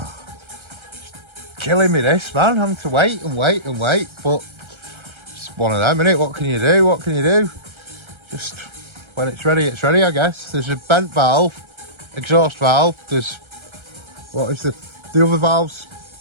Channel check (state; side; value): late; left; 1.3 ms